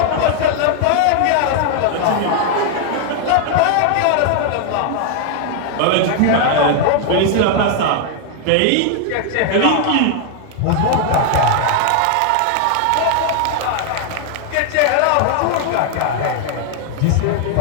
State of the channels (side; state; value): both; different; correlation 0.00